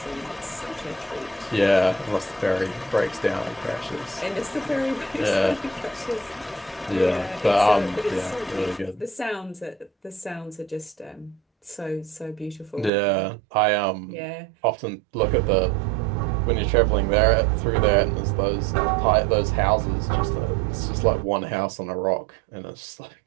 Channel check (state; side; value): drops out; left; at 12.9 s